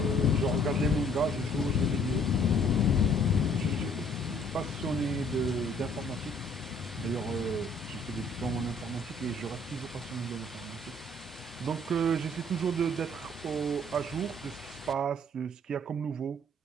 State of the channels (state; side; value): normal; both; correlation 0.60